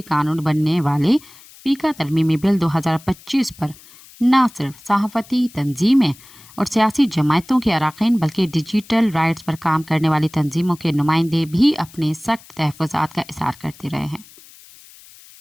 قانون بننے والے پیکا ترمیمی بل 2025 پر نہ صرف صحافتی تنظیمیں اور سیاسی جماعتوں کے اراکین بلکہ ڈیجیٹل رائٹس پر کام کرنے والی تنظیموں کے نمائندے بھی اپنے سخت تحفظات کا اظہار کرتے رہے ہیں،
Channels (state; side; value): noise; left; hiss, 23 dB below the sound